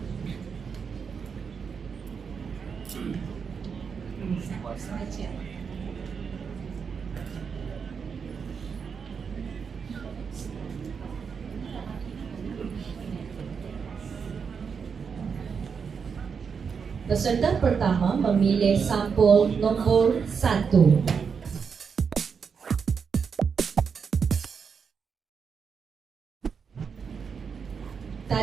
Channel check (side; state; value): left; quieter; 6.1 dB